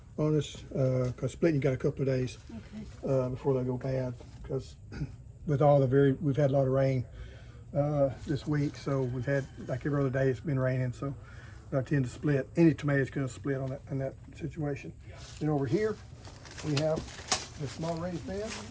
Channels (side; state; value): both; identical; correlation 1.00